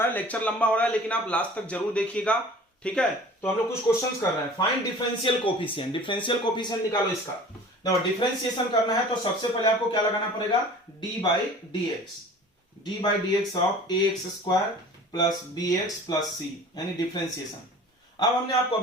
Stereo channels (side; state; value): both; normal; correlation 0.44